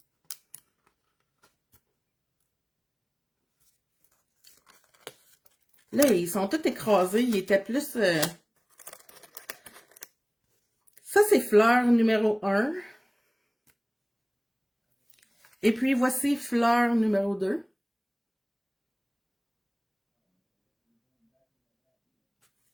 Là, ils sont tous écrasés. Ils étaient plus... Ça, c'est fleur numéro 1. Et puis, voici fleur numéro 2.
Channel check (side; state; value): both; identical; correlation 1.00